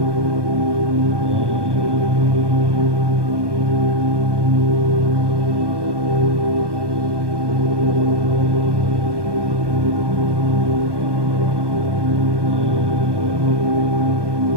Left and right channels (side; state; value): left; late; 1.2 ms